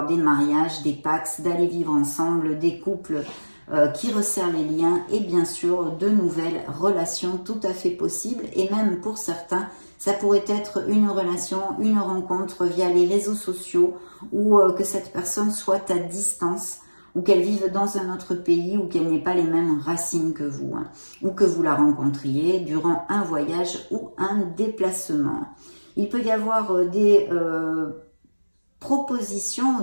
des mariages, des pax, d'aller vivre ensemble, des couples qui resserrent les liens et bien sûr de nouvelles relations tout à fait possibles. Et même pour certains, ça pourrait être une relation, une rencontre via les réseaux sociaux ou que cette personne soit à distance ou qu'elle vive dans un autre pays ou qu'elle n'ait pas les mêmes racines que vous, hein, ou que vous la rencontriez durant un voyage ou un déplacement. Il peut y avoir des propositions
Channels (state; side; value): inverted; both; correlation -1.00